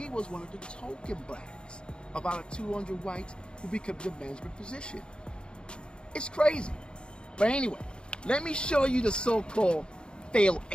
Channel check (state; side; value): late; right; 0.052 ms